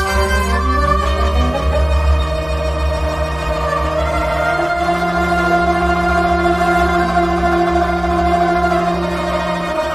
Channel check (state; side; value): noise; left; hum, 20 dB below the sound